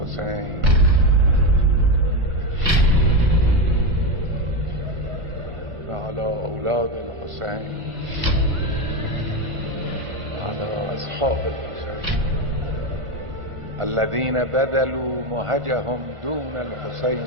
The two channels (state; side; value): late; left; 1.6 ms